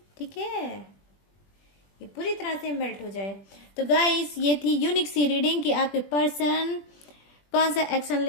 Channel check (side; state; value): right; late; 20 ms